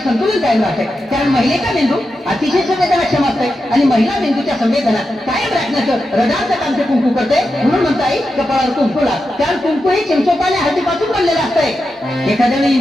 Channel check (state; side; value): normal; both; correlation 0.89